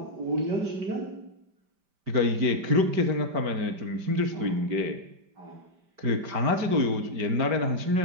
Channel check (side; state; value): left; late; 5.1 ms